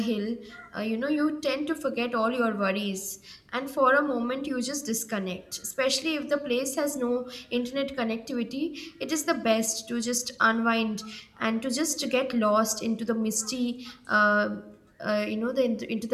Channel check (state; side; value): identical; both; correlation 1.00